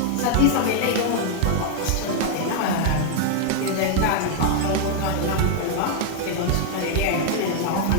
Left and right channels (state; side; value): different; both; correlation 0.00